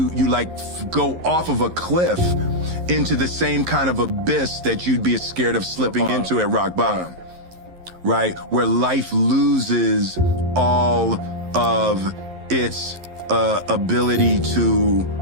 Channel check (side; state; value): left; late; 11 ms